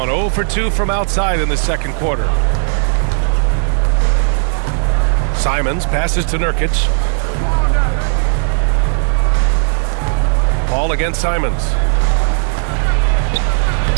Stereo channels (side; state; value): left; silent; 70 dB below the other